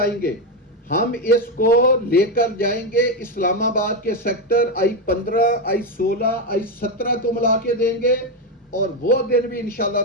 گے، ہم اس کو لے کر جائیں گے اسلام آباد کے سیکٹر I-15 I-16 I-17 کو ملا کے دیں گے، اور وہ دن بھی انشاءاللہ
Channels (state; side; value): normal; both; correlation 0.09